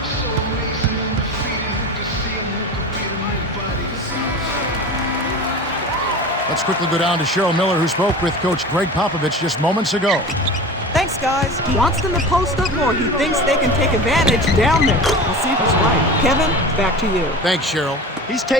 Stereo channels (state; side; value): normal; both; correlation 0.33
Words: Let's quickly go down to Cheryl Miller, who spoke with Coach Greg Popovich just moments ago. Thanks, guys. He wants them to post up more. He thinks they can take advantage down there. We'll see if he's right. Kevin, back to you. Thanks, Cheryl. He's